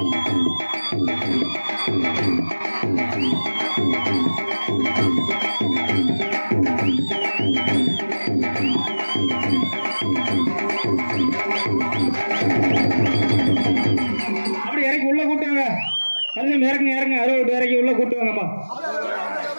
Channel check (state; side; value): inverted; both; correlation -1.00